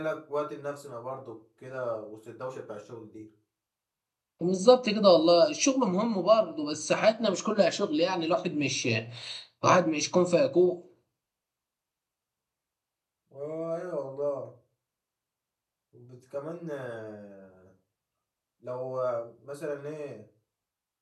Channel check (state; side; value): identical; both; correlation 1.00